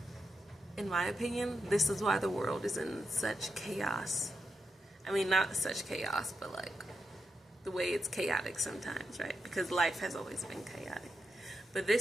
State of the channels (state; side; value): normal; both; correlation 0.86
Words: In my opinion, this is why the world is in such chaos. I mean, not such chaos, but like the way it's chaotic sometimes, right? Because life has always been chaotic. But